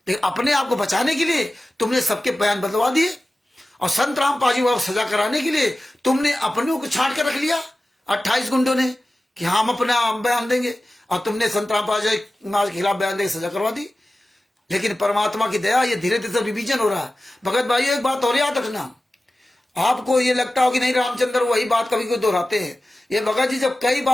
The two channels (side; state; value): both; normal; correlation 0.95